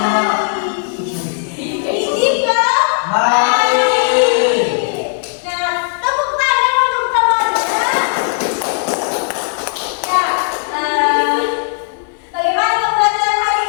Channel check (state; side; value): silent; right; 67 dB below the other